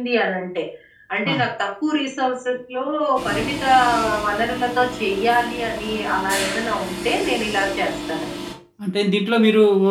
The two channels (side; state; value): both; identical; correlation 1.00